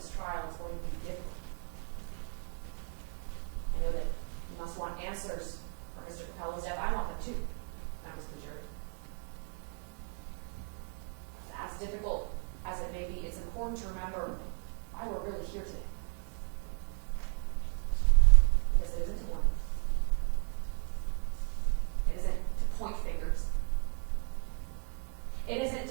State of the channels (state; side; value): quieter; left; 39.9 dB